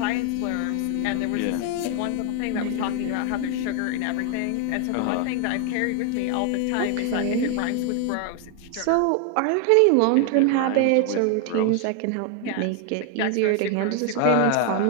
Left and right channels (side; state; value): both; different; correlation 0.00